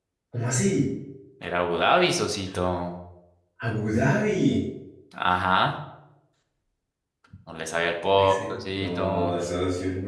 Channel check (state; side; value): identical; both; correlation 1.00